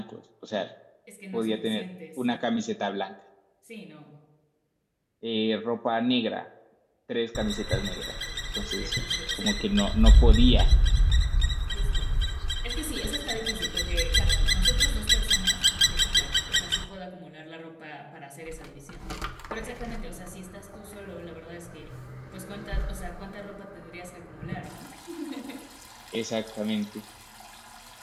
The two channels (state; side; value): identical; both; correlation 1.00